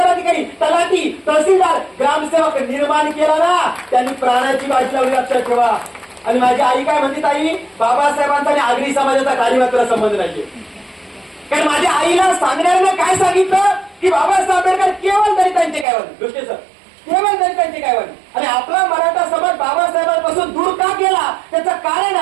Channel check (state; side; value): drops out; left; at 15.9 s